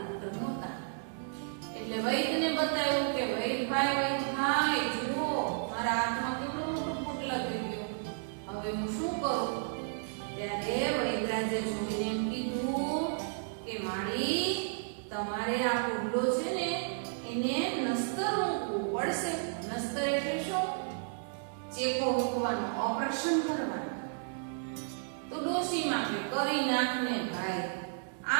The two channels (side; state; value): left; silent; digital silence